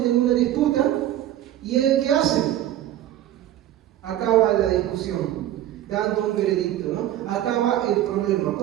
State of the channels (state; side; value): quieter; left; 12.7 dB